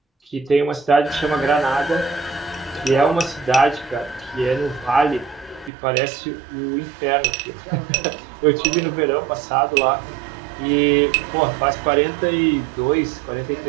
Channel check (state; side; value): drops out; left; at 5.7 s